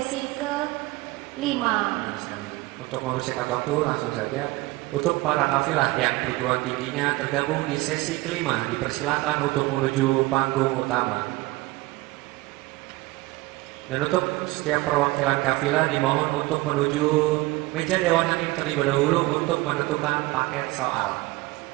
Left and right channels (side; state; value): left; quieter; 21.0 dB